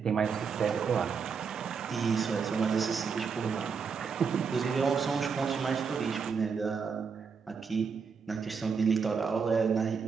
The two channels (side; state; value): left; quieter; 5.8 dB